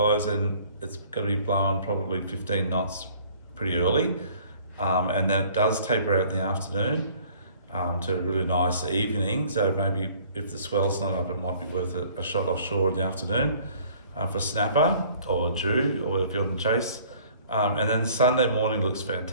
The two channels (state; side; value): inverted; both; correlation -0.54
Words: and it's going to be blowing probably 15 knots pretty early. And then it does taper out in the afternoon to a really nice evening. So maybe if the swell's not up, it might be worth a shot offshore in the afternoon for snapper or Jew or if you're on the chase. And then Sunday morning looks